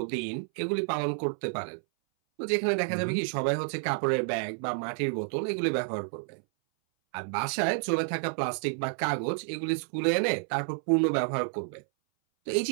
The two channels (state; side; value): silent; left; 58 dB below the other